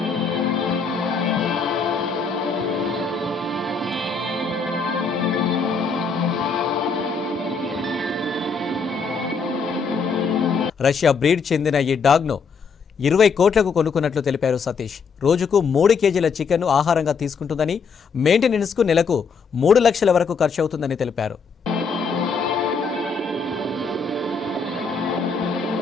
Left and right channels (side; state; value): right; quieter; 5.3 dB